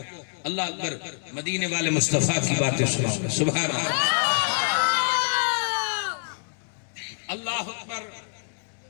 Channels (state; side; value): silent; right; digital silence